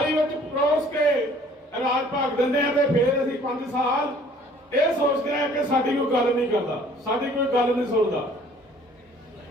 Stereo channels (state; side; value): normal; both; correlation 0.55